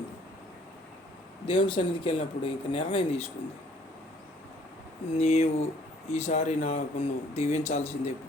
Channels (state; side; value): normal; both; correlation 0.60